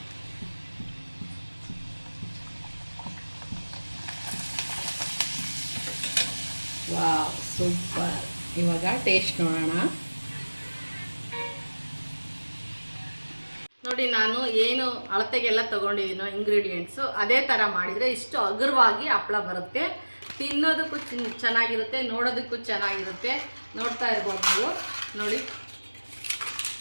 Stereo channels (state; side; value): inverted; both; correlation -1.00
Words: Wow, super. ಇವಾಗ ಟೇಸ್ಟ್ ನೋಡೋಣ. ನೋಡಿ, ನಾನು ಏನು ಅಳತೆಗೆಲ್ಲ ತೊಗೊಂಡಿದ್ದೀನೋ ಇಂಗ್ರೀಡಿಯೆಂಟ್ಸು ಅದೇ ಥರ ಮಾಡಿದರೆ ಇಷ್ಟು ಹಗುರವಾಗಿ ಹಪ್ಪಳ ಬರುತ್ತೆ. ತಿನ್ನೋದಕ್ಕೂ ಚೆನ್ನಾಗಿರುತ್ತೆ, ನೋಡೋದಕ್ಕೂ ಚೆನ್ನಾಗಿರುತ್ತೆ. ನೋಡ್ತಾ ಇರ್ಬೋದು ನೀವು ನೋಡಿ.